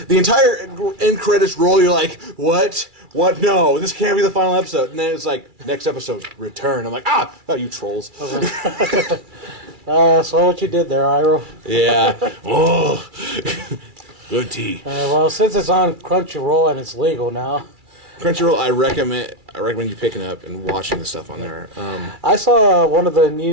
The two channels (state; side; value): late; left; 2.3 ms